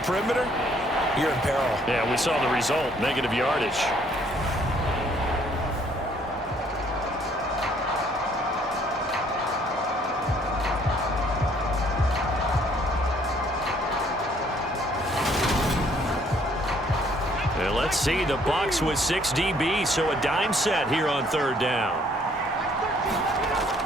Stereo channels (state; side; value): normal; both; correlation 0.63